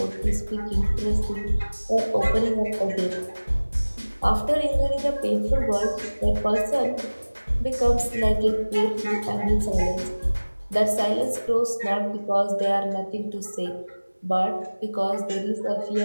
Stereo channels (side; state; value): both; inverted; correlation -1.00